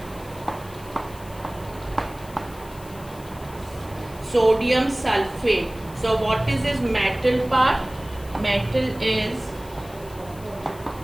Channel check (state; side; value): noise; left; hiss, 20 dB below the sound